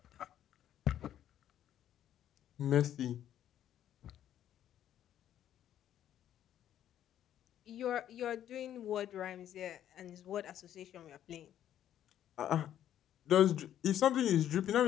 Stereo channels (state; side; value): quieter; right; 11.0 dB